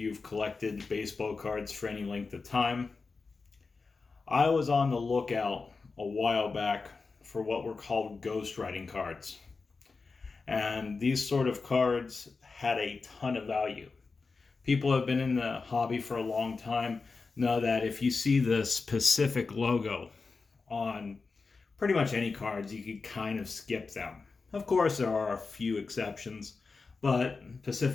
collected baseball cards for any length of time. I was on the lookout a while back for what were called ghostwriting cards. And these sort of cards had a ton of value. People who have been in the hobby for a long time know that if you see the specific logo on pretty much any cards, you can kind of skip them. Of course, there are a few exceptions, but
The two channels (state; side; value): quieter; right; 4.3 dB